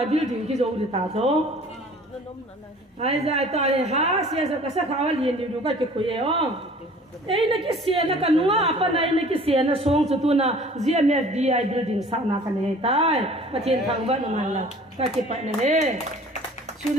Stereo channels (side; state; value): both; normal; correlation 0.49